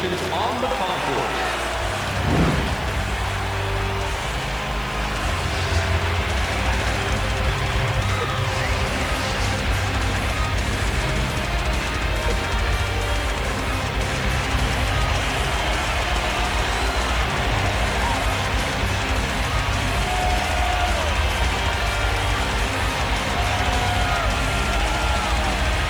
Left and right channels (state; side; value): noise; right; hiss, 24 dB below the sound